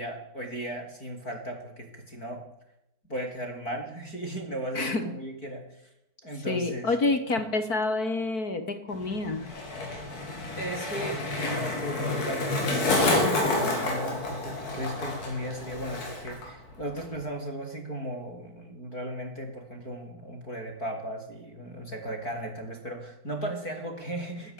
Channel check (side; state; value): right; late; 4.5 ms